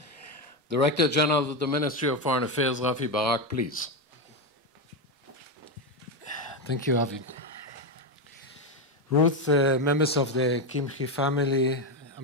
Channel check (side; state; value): both; normal; correlation 0.10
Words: Director General of the Ministry of Foreign Affairs, Raffi Barak, please. Thank you, Avi. Ruth, members of the Kimche family,